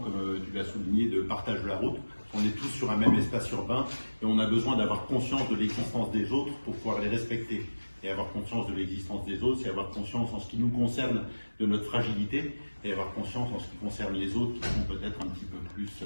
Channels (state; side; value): inverted; both; correlation -1.00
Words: tu l'as souligné, de partage de la route. On est tous sur un même espace urbain et on a besoin d'avoir conscience de l'existence des autres pour pouvoir les respecter. Et avoir conscience de l'existence des autres, c'est avoir conscience en ce qui nous concerne de notre fragilité et avoir conscience en ce qui concerne les autres qui sont peut-être un petit peu plus